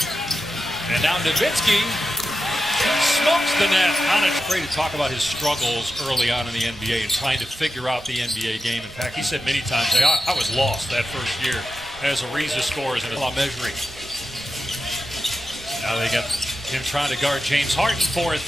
And now Nowitzki smokes the net. Afraid to talk about his struggles early on in the NBA and trying to figure out the NBA game. In fact, he said many times, I was lost that first year as Ariza scores and measuring. Now they got him trying to guard James Harden for a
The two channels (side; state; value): right; noise; rumble, 19 dB below the sound